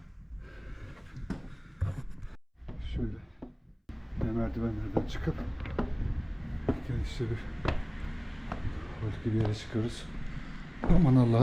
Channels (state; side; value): identical; both; correlation 1.00